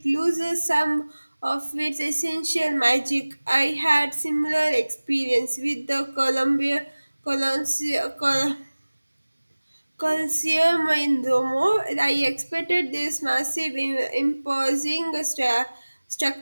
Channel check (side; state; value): both; inverted; correlation -1.00